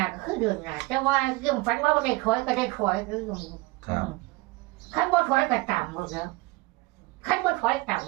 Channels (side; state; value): left; quieter; 22.8 dB